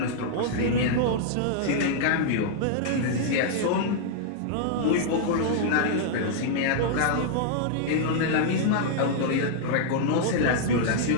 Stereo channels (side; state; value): both; different; correlation -0.01